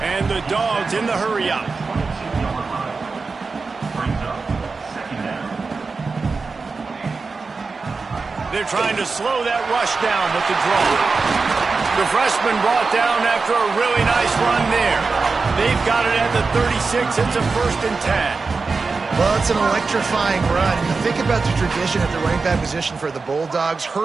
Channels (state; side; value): quieter; left; 4.3 dB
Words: And the Dogs in the hurry-up. They're trying to slow that rush down with the draw. The freshman brought down after a really nice run there. They've got it at the 36. It's a first and 10. Well, it's an electrifying run. And you think about the tradition at the running back position for the Bulldogs.